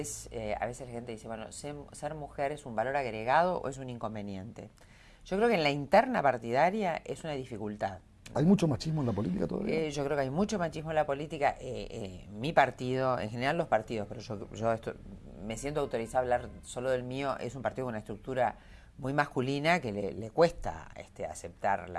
a veces la gente dice, bueno, ser mujer es un valor agregado o es un inconveniente. Yo creo que en la interna partidaria es una dificultad. ¿Hay mucho machismo en la política todavía? Yo creo que hay mucho machismo en la política. Mi partido, en general los partidos, pero yo me siento autorizada a hablar solo del mío, es un partido con una estructura muy masculina que le cuesta aceptar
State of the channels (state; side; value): identical; both; correlation 1.00